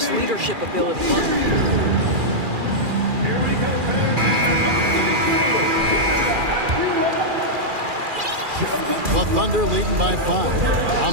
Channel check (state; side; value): late; left; 2.4 ms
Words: leadership ability. The Thunder leading by 5.